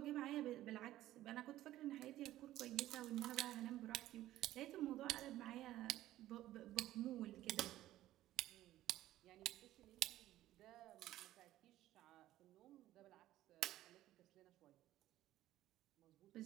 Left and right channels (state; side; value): quieter; left; 14.5 dB